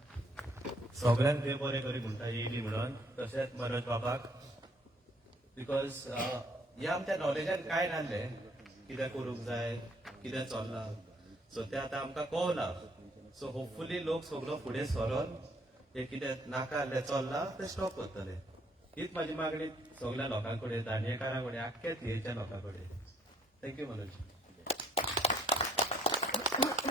सगळ्यांक देव बरें करी म्हणटा येयली म्हणून तशेंच मनोज बाबाक बिकॉज हे आमच्या नॉलेजान काय नासलें कितें करूंक जाय कितें चल्लां सो तें आतां आमकां कळना सो होपफुली लोक सगळो फुडें सरोन हे कितें नाका आसलें चल्लां तें स्टॉप करतले हीच म्हाजी मागणी सगळ्या लोकां कडेन दांडियेकारां कडेन आख्ख्या थियेच्या लोकां कडेन thank you Manoj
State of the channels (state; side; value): normal; both; correlation 0.63